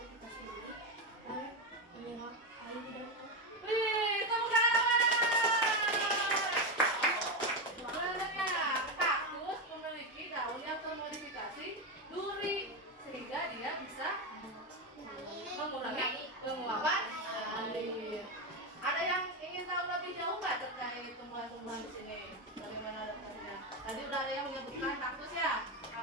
kita sendiri dan menyerap air di dalam. Wih, tepuk tangan. Sebenarnya kaktus memiliki daun yang termodifikasi duri sehingga dia bisa mengurangi penguapan air. Ada yang ingin tahu lebih jauh nggak terkait tumbuhan-tumbuhan di sini? Bagaimana adaptasinya? Tadi udah ada yang menyebutkan kaktus ya.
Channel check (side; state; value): both; normal; correlation 0.11